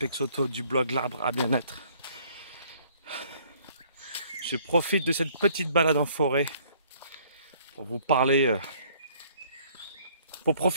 du blog L'Arbre à Bien-être. Je profite de cette petite balade en forêt pour vous parler, pour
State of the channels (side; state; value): both; inverted; correlation -0.60